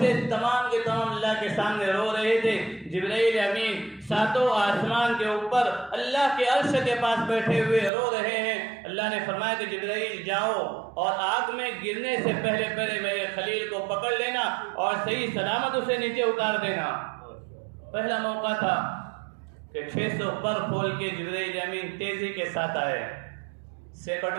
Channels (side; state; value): left; drops out; at 7.9 s